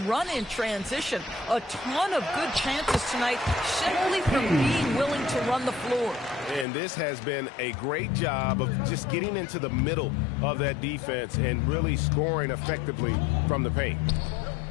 run in transition. A ton of good chances tonight simply from being willing to run the floor. And this has been a great job of just getting into the middle of that defense and really scoring effectively from the paint.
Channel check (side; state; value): right; drops out; at 6.7 s